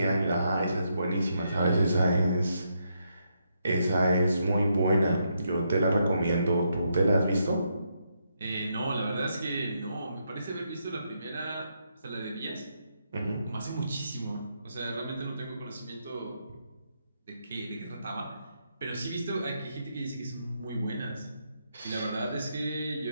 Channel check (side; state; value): both; inverted; correlation -0.79